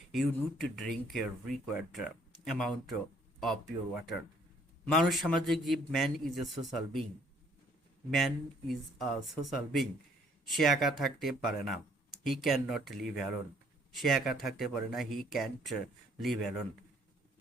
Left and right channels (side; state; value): both; normal; correlation 0.63